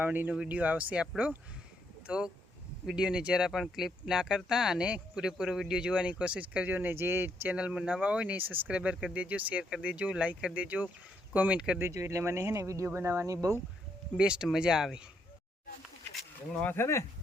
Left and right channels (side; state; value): both; normal; correlation 0.75